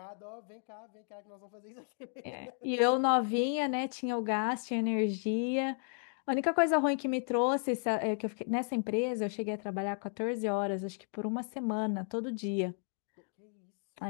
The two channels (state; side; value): silent; right; 55 dB below the other